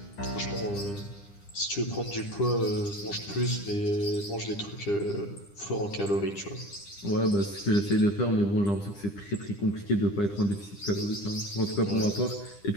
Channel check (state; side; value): late; right; 10 ms